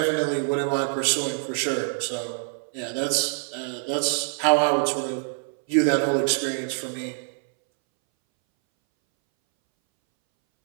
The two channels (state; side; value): silent; left; 62 dB below the other